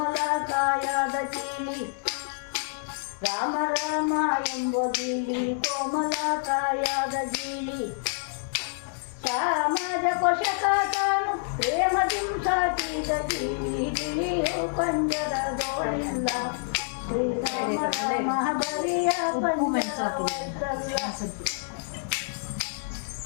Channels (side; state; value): right; silent; digital silence